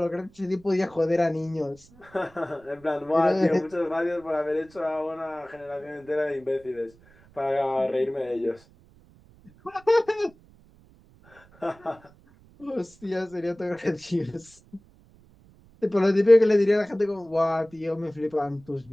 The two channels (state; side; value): noise; right; rumble, 27 dB below the sound